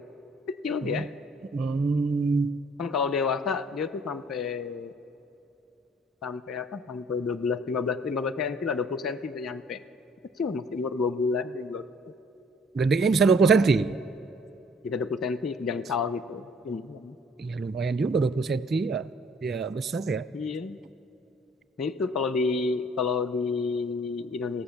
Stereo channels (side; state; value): both; normal; correlation 0.57